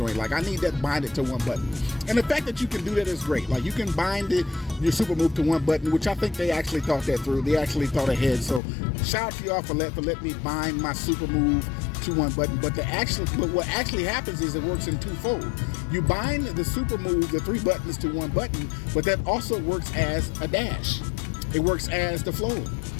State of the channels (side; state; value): right; drops out; at 8.6 s